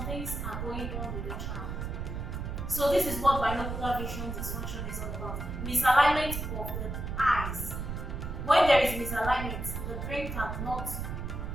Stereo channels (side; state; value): right; noise; rumble, 5 dB below the sound